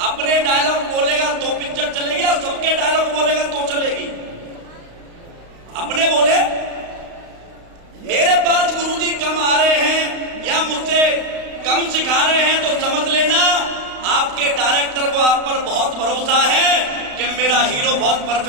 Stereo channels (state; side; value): late; left; 35 ms